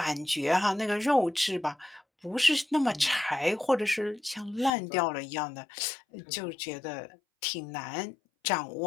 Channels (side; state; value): right; drops out; at 4.7 s